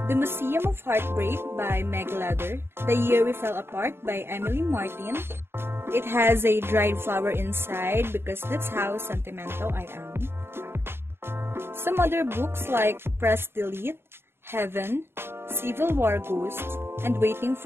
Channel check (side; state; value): left; late; 0.11 ms